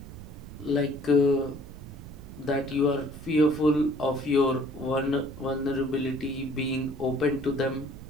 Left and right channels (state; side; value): noise; right; rumble, 14 dB below the sound